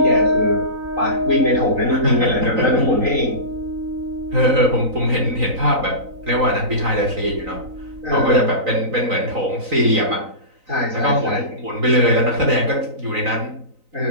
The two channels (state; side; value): late; left; 3.9 ms